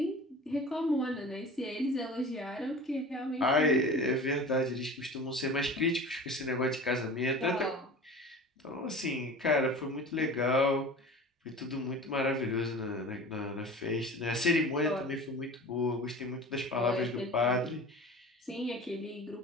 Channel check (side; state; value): both; normal; correlation 0.38